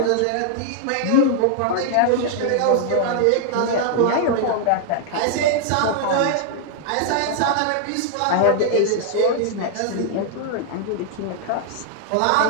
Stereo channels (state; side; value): different; both; correlation -0.01